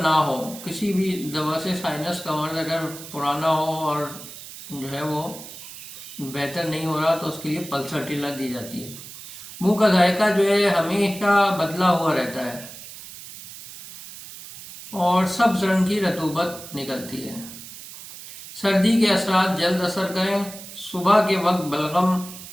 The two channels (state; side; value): noise; right; hiss, 14 dB below the sound